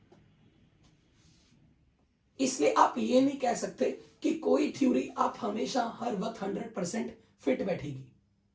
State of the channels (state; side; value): identical; both; correlation 1.00